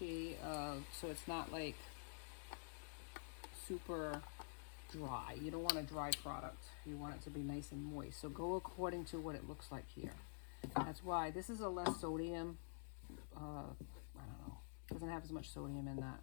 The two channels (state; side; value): silent; right; digital silence